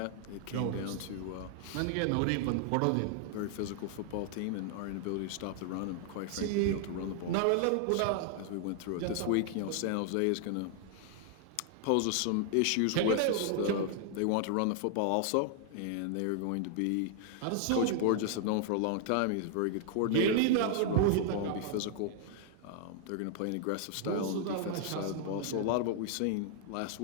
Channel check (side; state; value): both; different; correlation 0.00